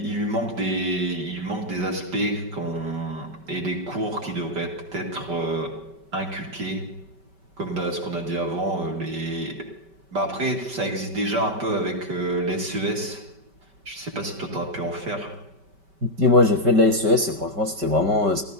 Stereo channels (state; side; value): late; left; 5.2 ms